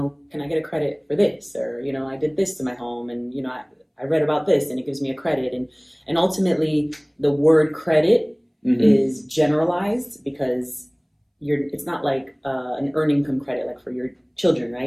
can I get a credit for this? Or, I did this to my home and, I read about this and it gives me a credit. And ultimately the word credit is generalized because it's not like an earned income credit, like for your children,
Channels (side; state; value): both; identical; correlation 1.00